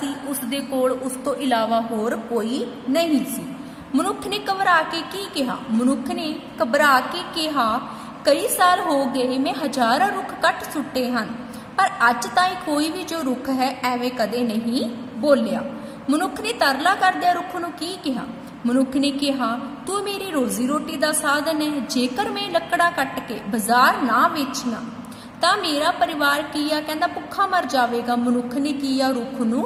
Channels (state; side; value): identical; both; correlation 1.00